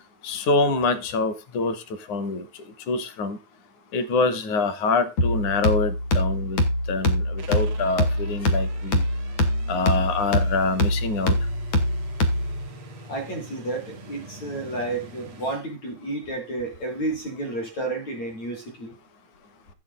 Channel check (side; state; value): right; late; 9.6 ms